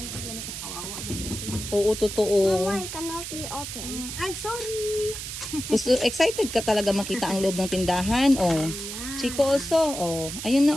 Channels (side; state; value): right; noise; hiss, 7 dB below the sound